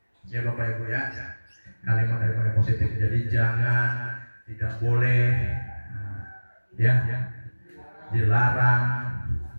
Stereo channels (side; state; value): both; inverted; correlation -1.00